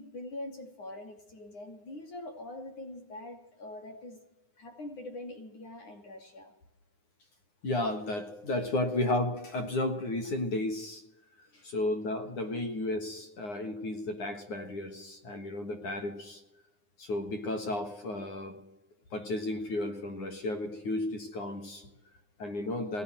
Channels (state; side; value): late; right; 9.7 ms